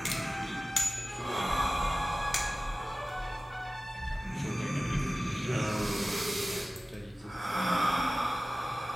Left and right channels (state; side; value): normal; both; correlation 0.96